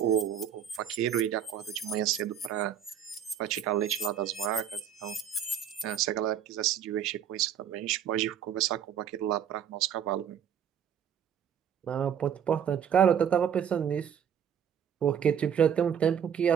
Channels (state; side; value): quieter; left; 8.6 dB